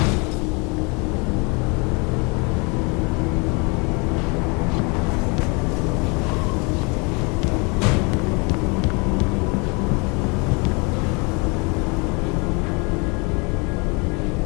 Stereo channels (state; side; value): quieter; right; 30.6 dB